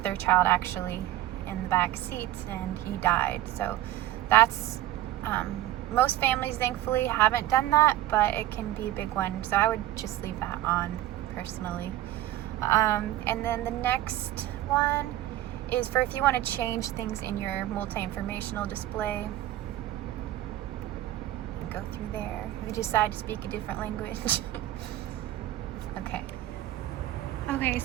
their child actually in the back seats and he died. So that's, most families thankfully haven't done that, but it can be a big one. So I would just leave that on personally. And then the next one is for if you want to change things in your multi-informational display. You can go through there. If you decide to speak a different language. Okay. Okay,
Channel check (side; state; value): left; quieter; 14.6 dB